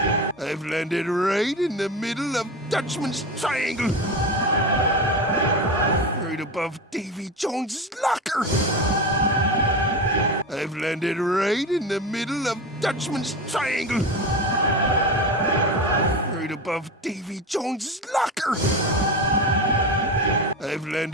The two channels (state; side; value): normal; both; correlation 0.23